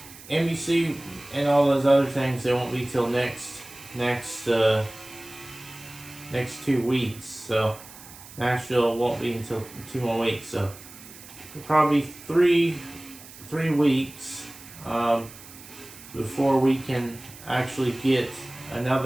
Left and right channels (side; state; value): right; noise; hiss, 18 dB below the sound